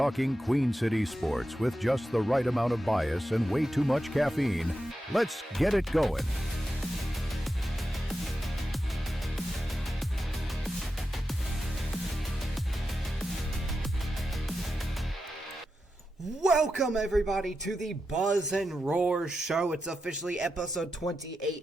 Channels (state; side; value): normal; both; correlation 0.89